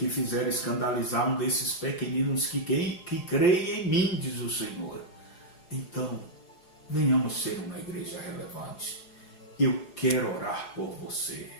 fizer escandalizar um desses pequeninos que creem em mim, diz o Senhor. Então, venhamos ser uma igreja relevante. Eu quero orar por você.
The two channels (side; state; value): right; late; 4.8 ms